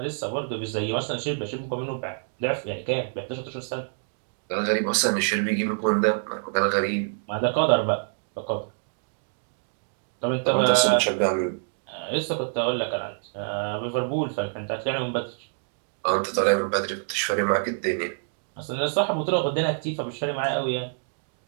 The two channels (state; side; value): silent; left; digital silence